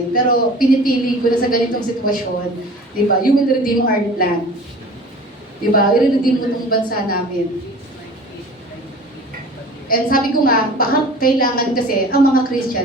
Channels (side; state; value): both; normal; correlation 0.42